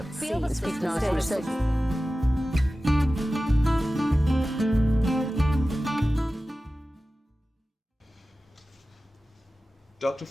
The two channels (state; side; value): normal; both; correlation 0.95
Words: Speak now to research. Dr.